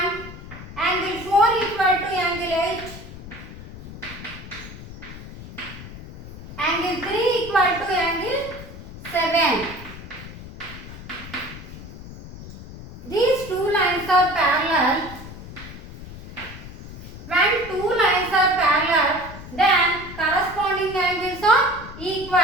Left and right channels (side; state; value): left; noise; rumble, 14 dB below the sound